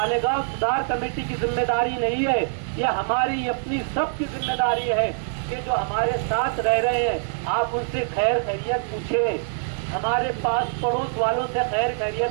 سدھار کمیٹی کی ذمہ داری نہیں ہے، یہ ہماری اپنی سب کی ذمہ داری ہے کہ جو ہمارے ساتھ رہ رہے ہیں آپ ان سے خیر خیریت پوچھیں، ہمارے پاس پڑوس والوں سے خیر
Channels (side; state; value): left; silent; digital silence